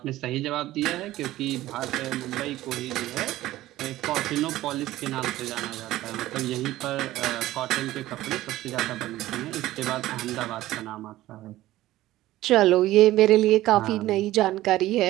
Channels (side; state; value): left; quieter; 15.7 dB